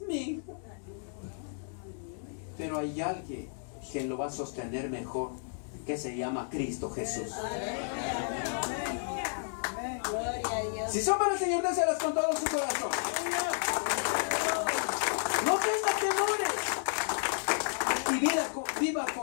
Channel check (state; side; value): silent; right; digital silence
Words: Mi hija. Pero hay alguien que lo va a sostener mejor, que se llama Cristo Jesús. Si son para el Señor, déselas con todo su corazón. No tenga temores. Y viva